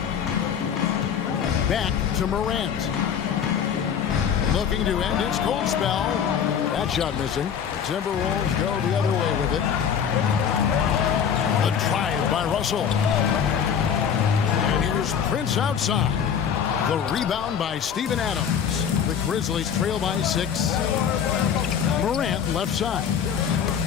Back to Morant. Looking to end its cold spell. That shot missing. The Timberwolves go the other way with it. The drive by Russell. And here's Prince outside. The rebound by Steven Adams. The Grizzlies trail by 6. Morant left side.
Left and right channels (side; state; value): right; quieter; 7.8 dB